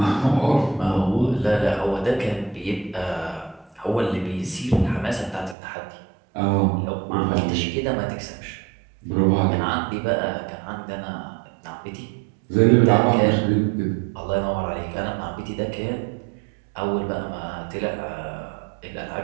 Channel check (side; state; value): left; drops out; at 5.6 s